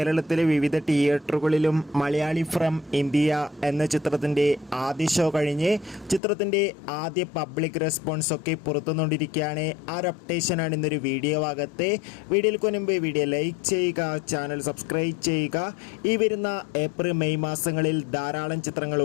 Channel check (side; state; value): right; drops out; at 6.2 s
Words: വിവിധ തിയേറ്ററുകളിലും മലയാളി ഫ്രം ഇന്ത്യ എന്ന ചിത്രത്തിൻ്റെ ആദ്യ ഷോ കഴിഞ്ഞ് ചിത്രത്തിൻ്റെ ആദ്യ പബ്ലിക് റെസ്പോൺസ് ഒക്കെ പുറത്തുകൊണ്ടിരിക്കുകയാണ്. ആ ഒരു അപ്ഡേഷനാണ് ഇന്നൊരു വീഡിയോ ഭാഗത്ത്. വീഡിയോയ്ക്ക് മുൻപ് വീഡിയോ ലൈക്ക് ചെയ്യുക, ചാനൽ സബ്സ്ക്രൈബ് ചെയ്യുക. ഈ വരുന്ന ഏപ്രിൽ മെയ് മാസങ്ങളിൽ ധാരാളം ചിത്രങ്ങൾ